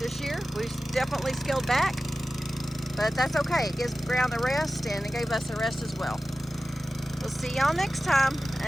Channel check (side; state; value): both; normal; correlation 0.95